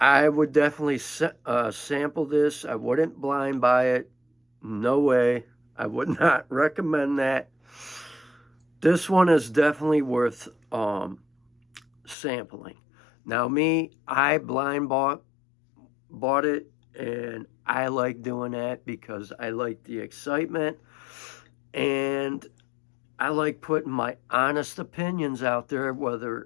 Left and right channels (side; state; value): right; drops out; at 12.2 s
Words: would definitely sample this. I wouldn't blind buy it. No way. I would not recommend that. This one is definitely worth sampling. Now me, I blind bought it, and I like doing that because I like the excitement, and I like putting my honest opinions out there,